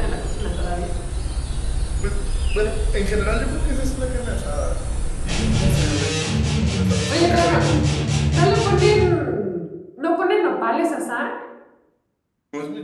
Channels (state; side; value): identical; both; correlation 1.00